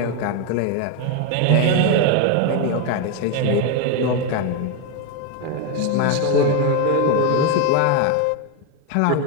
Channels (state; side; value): different; both; correlation 0.02